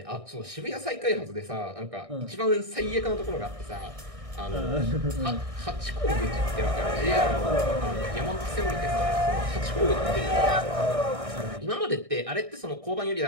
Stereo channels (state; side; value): late; left; 1.6 ms